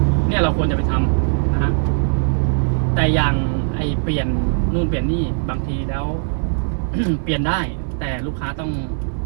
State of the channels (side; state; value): left; silent; digital silence